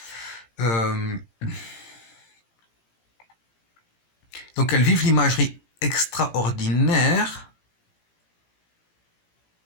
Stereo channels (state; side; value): late; right; 18 ms